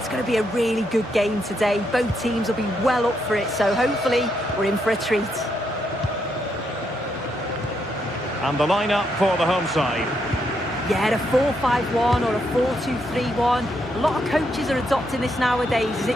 going to be a really good game today. Both teams will be well up for it, so hopefully we're in for a treat. And the lineup for the home side. Yeah, a 4-5-1 or a 4-2-3-1. A lot of coaches are adopting this nowadays, as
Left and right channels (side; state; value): both; normal; correlation 0.78